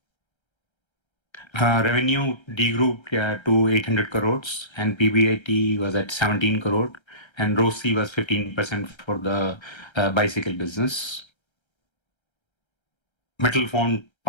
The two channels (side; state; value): right; late; 1.3 ms